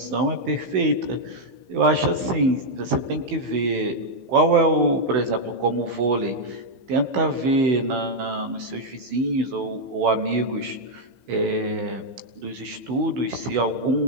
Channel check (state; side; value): late; left; 15 ms